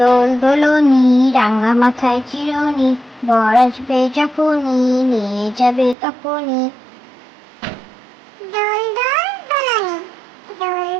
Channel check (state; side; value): drops out; left; at 6.0 s